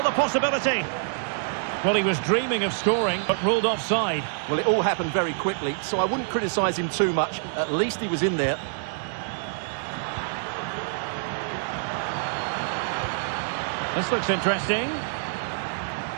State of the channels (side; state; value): left; silent; digital silence